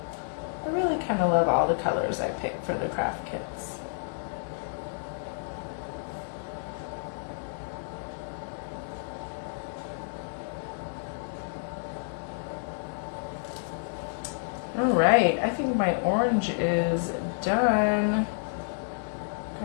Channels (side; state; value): right; silent; 58 dB below the other